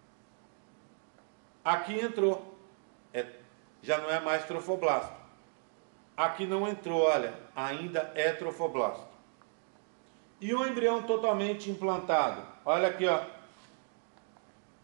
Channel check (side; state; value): left; silent; 55 dB below the other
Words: Aqui entrou. Já não é mais trofoblasto. Aqui não entrou, olha. Ainda é trofoblasto. E o embrião totalmente implantado. Olha aqui, ó.